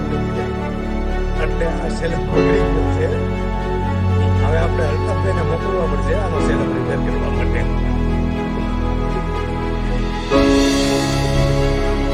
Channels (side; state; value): both; identical; correlation 1.00